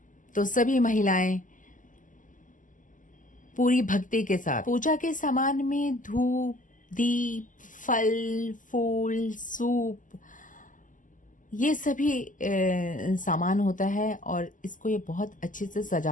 तो सभी महिलाएं पूरी भक्ति के साथ पूजा के सामान में धूप, दीप, फल, फूल, सूप, ये सभी सामान होता है और इसको ये बहुत अच्छे से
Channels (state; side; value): late; right; 0.38 ms